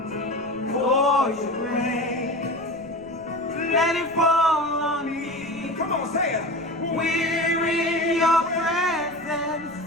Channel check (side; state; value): right; noise; rumble, 24 dB below the sound